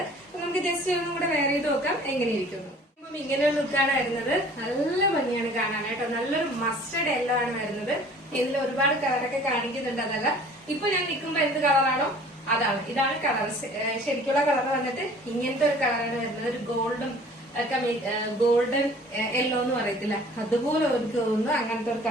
നമുക്ക് ജസ്റ്റ് ഒന്നും കൂടെ വെയർ ചെയ്ത് നോക്കാം എങ്ങനെയിരിക്കുന്നു. ഇങ്ങനെയുള്ള ലുക്കാണ് വരുന്നത്. നല്ല ഭംഗിയാണ് കാണാനായിട്ടോ. നല്ലൊരു മസ്റ്റർഡ് യെല്ലോ ആണ് വരുന്നത്. ഇതിൽ ഒരുപാട് കളറൊക്കെ കാണിക്കുന്നുണ്ട്, അതല്ല ഇപ്പൊ ഞാൻ നിൽക്കുമ്പോ എന്ത് കളറാണോ അതാണ്. ഇതാണ് കളർ, ശരിക്കുള്ള കളർ വന്നിട്ട് ഇങ്ങനത്തെ ഒരു കളറാണ് വരുന്നത്. ഒരു ഗോൾഡൻ യെല്ലോ എന്ന് പറയത്തില്ല, അതുപോലെ എനിക്ക് തോന്നുന്നു അങ്ങനത്തെ ഒരു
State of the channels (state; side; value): normal; both; correlation 0.50